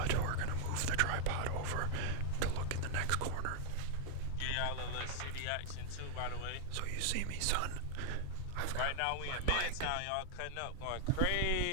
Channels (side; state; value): both; different; correlation 0.00